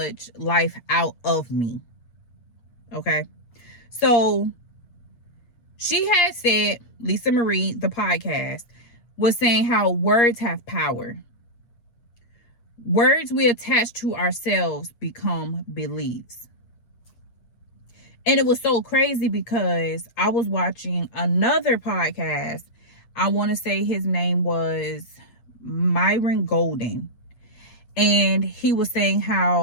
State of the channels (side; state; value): right; late; 8.5 ms